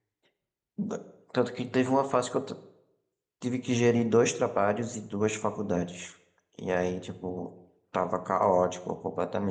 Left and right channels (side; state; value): both; identical; correlation 1.00